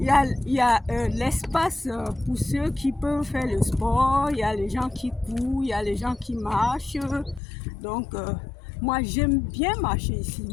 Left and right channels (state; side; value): drops out; right; at 7.4 s